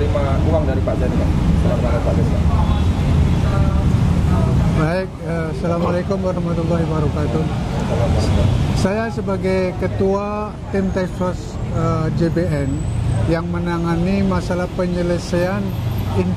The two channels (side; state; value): both; identical; correlation 1.00